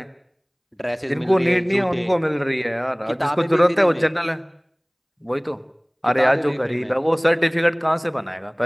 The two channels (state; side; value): identical; both; correlation 1.00